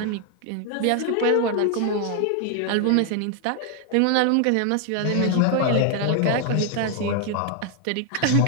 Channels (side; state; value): both; different; correlation 0.00